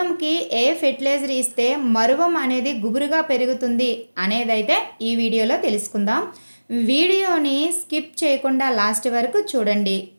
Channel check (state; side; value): inverted; both; correlation -1.00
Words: ఏ ఫెర్టిలైజర్ ఇస్తే మరువం అనేది గుబురుగా పెరుగుతుంది అనేదైతే ఈ వీడియోలో తెలుసుకుందాం. వీడియోని స్కిప్ చేయకుండా లాస్ట్ వరకు చూడండి.